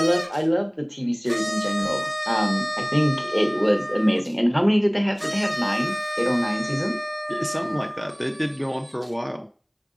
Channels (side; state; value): both; identical; correlation 1.00